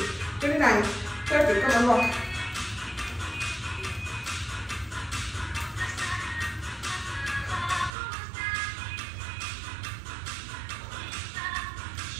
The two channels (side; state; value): left; drops out; at 7.9 s